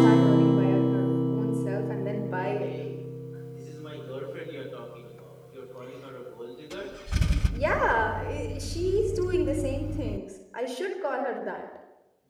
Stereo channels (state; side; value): identical; both; correlation 1.00